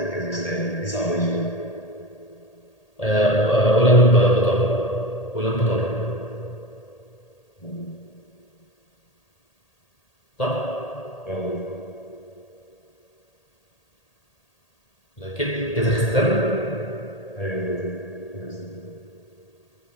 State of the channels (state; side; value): late; right; 1.8 ms